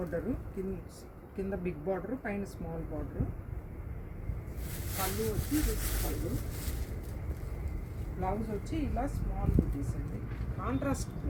కింద బిగ్ బార్డరు, పైన స్మాల్ బార్డరు. పళ్ళు వచ్చి పళ్ళు. బ్లౌజ్ వచ్చి ఇలా స్మాల్ బుటీస్ అండి, కాంట్రాస్ట్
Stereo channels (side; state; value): both; identical; correlation 1.00